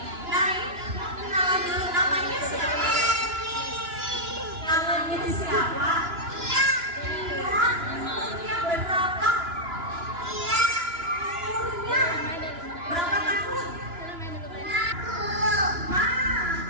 Nah, kenalan dulu namanya siapa? Namanya siapa? Iya. Yang berapa? Iya. Umurnya berapa tahun?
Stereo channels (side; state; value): left; late; 2.9 ms